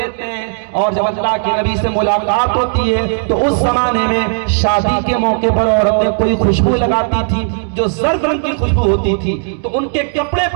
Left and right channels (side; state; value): left; silent; digital silence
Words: हैं। और जब अल्लाह के नबी से मुलाकात होती है तो उस जमाने में शादी के मौके पर औरतें कोई खुशबू लगाती थी जो जर्द रंग की खुशबू होती थी, तो उनके कपड़े